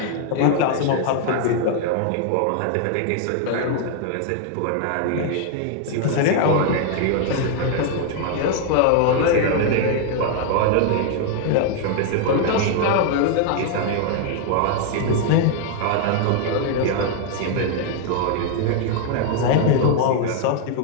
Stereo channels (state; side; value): different; both; correlation 0.00